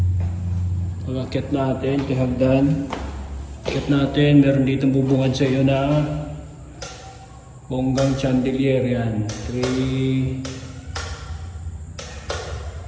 Pag-akit natin, kahagdan. Akit natin, meron dito bubungad sa iyo na bonggang chandelier yan. 3.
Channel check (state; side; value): identical; both; correlation 1.00